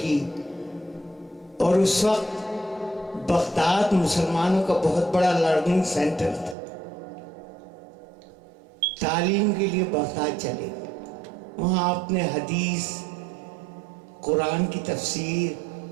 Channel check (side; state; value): left; drops out; at 6.6 s